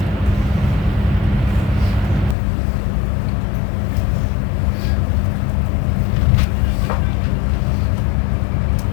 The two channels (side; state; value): right; drops out; at 2.4 s